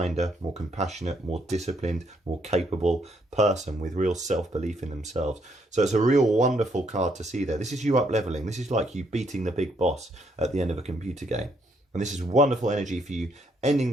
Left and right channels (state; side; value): normal; both; correlation 0.72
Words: more compassionate, more disciplined, more capable person with real self-belief in themselves. So it's a real wonderful card to see there. This is you up leveling. This is like you beating the big boss at the end of a computer game. And this is wonderful energy for you ending